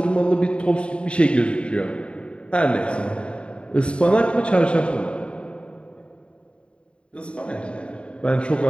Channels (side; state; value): right; late; 0.056 ms